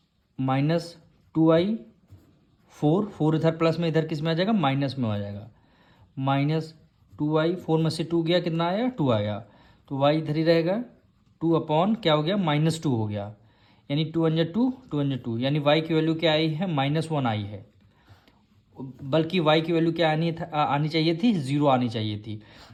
-2y 4 इधर प्लस में, इधर किस में आ जाएगा, माइनस में आ जाएगा। -2y 4 में से 2 गया, कितना आया, 2 आया। तो y इधर ही रहेगा, 2 अपॉन क्या हो गया, -2 हो गया, यानी 2 1 जा 2, 2 1 जा 2, यानी y की वैल्यू क्या आई है, -1 आई है। बल्कि y की वैल्यू क्या आनी चाहिए थी, 0 आनी चाहिए थी,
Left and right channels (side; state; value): both; identical; correlation 1.00